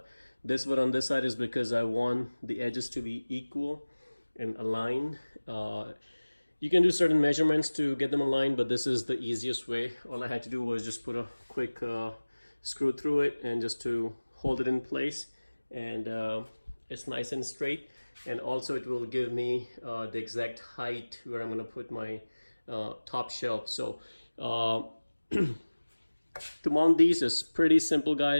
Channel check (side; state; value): both; inverted; correlation -1.00